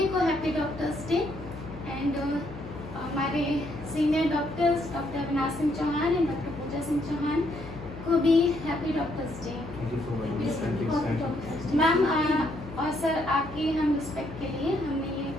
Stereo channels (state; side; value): noise; left; hum, 14 dB below the sound